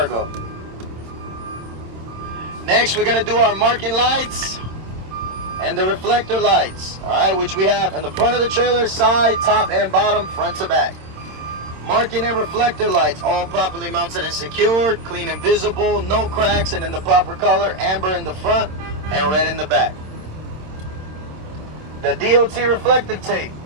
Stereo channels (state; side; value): late; left; 27 ms